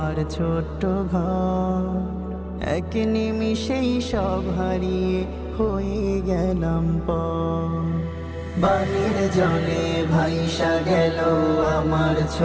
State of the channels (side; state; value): both; identical; correlation 1.00